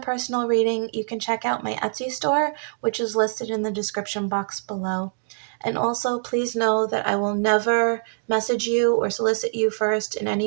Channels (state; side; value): silent; left; digital silence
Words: reading, you can check out my Etsy store, which is listed in the description box below. And also, please know that I will never message you or solicit you first in